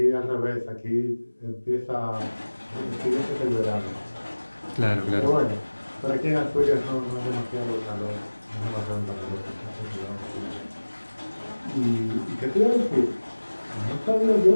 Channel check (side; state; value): both; inverted; correlation -1.00